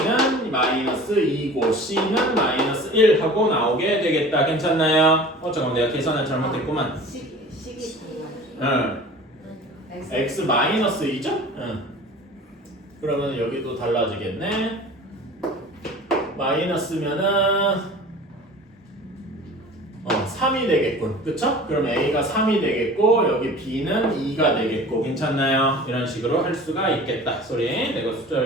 마이너스 2고 c는 마이너스 1 하고 나오게 되겠다. 괜찮나요? 잠깐만, 내가 계산을 잘못했구만. 식이 달라요. x 마이너스 2죠? 그러면 여기도 달라지겠네. 마이너스면은 3이 되겠군. 그쵸? 그럼 a가 3이 되겠고 여기 b는 2가 되겠고. 괜찮나요? 이런 식으로 할 수가 있겠다. 소리, 내가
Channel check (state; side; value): normal; both; correlation 0.41